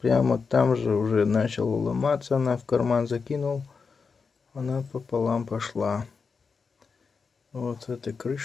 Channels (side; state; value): right; quieter; 5.2 dB